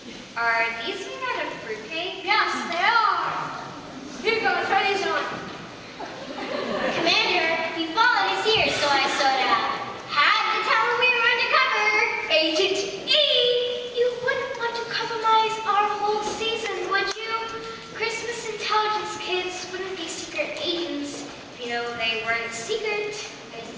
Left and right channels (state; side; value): identical; both; correlation 1.00